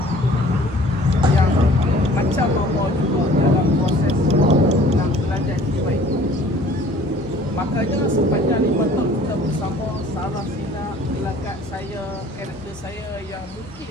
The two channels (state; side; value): normal; both; correlation 0.52